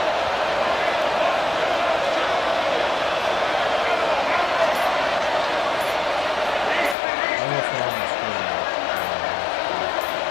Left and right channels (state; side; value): drops out; right; at 7.0 s